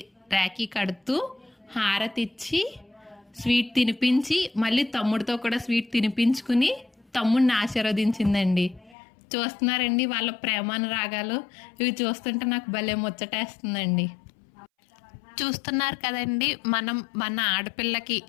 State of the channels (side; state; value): right; drops out; at 9.0 s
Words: రాఖీ కడుతూ హారతి ఇచ్చి స్వీట్ తినిపించి మళ్ళీ తమ్ముడితో కూడా స్వీట్ తినిపించుకుని తమ్ముడిని ఆశీర్వదించిందండి. చూస్తున్నారండి వాళ్ళ ప్రేమానురాగాలు. ఇవి చూస్తుంటే నాకు భలే ముచ్చటేస్తుందండి. చూస్తున్నారు కదండి, మనం మన ఆడపిల్లకి